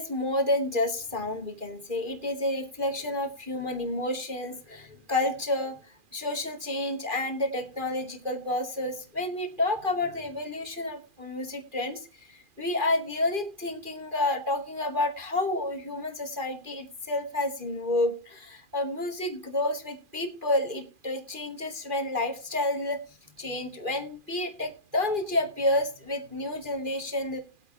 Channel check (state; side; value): late; left; 2.4 ms